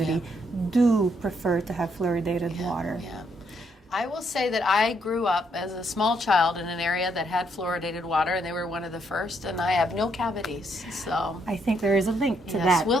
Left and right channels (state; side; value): normal; both; correlation 0.74